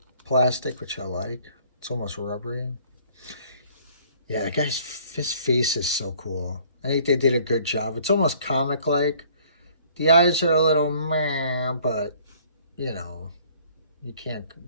plastic, which I like. It's almost rubbery. Yeah, that guy's his face is so cool. I think they did a good job. It's almost comic-like. The eyes are a little meh, but, you know, you can't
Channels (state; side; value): inverted; both; correlation -0.57